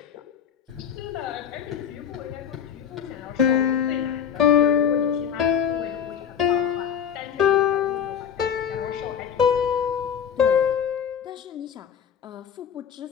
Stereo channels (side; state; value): right; quieter; 8.2 dB